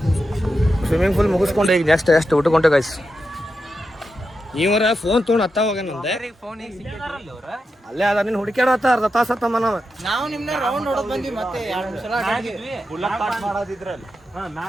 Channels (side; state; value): both; normal; correlation 0.88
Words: ಸ್ವಿಮ್ಮಿಂಗ್ ಪೂಲ್ ಮುಗಿಸ್ಕೊಂಡು ಈಗ ನೆಕ್ಸ್ಟ್ ಎಷ್ಟು ಊಟಕೊಂಡೆ ಗೈಸ್. ಇವರ ಫೋನ್ ತೊಗೊಂಡು ಹತ್ತ ಹೋಗ್ಯಾನಂದೆ ಅಲ್ಲೇ ಅದ ನೀನು ಹುಡುಕ್ಯಾಡತ್ತ ಅರ್ಧ ತಾಸ ಹತ್ತಮ್ಮ ನಾವು ನಿಮ್ನ ರೌಂಡ್ ಹೊಡೆದ್ ಬಂದ್ವಿ ಮತ್ತೆ 2 ಸಲ